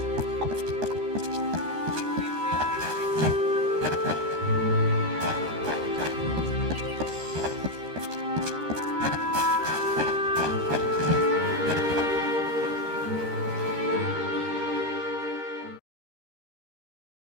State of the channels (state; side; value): late; left; 13 ms